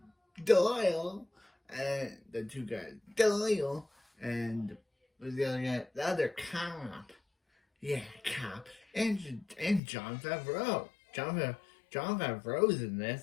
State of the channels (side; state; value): right; drops out; at 9.8 s